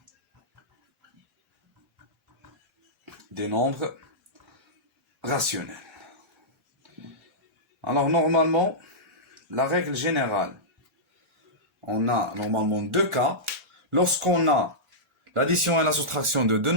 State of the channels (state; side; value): normal; both; correlation -0.13